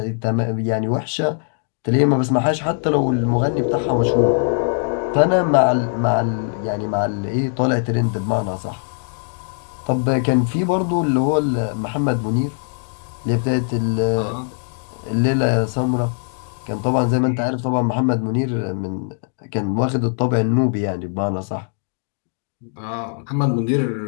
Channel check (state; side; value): silent; right; 65 dB below the other